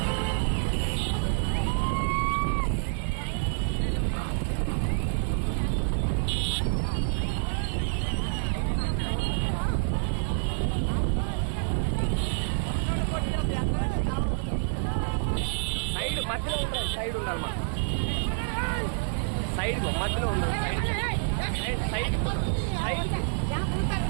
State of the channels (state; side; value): silent; left; 59 dB below the other